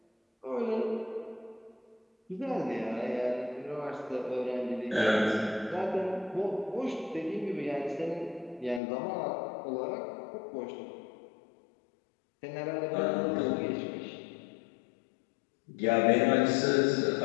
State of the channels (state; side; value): drops out; right; at 8.8 s